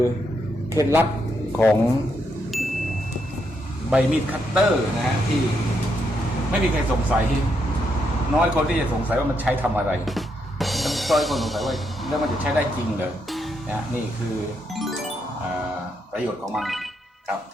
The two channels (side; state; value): both; normal; correlation 0.79